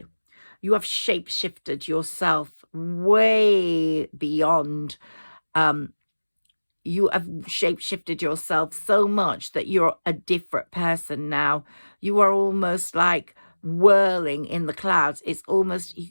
You have shape-shifted yourself way beyond. You have shape-shifted yourself so much that you're a different person now. You are almost like whirling in the clouds. It's almost,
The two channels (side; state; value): both; inverted; correlation -1.00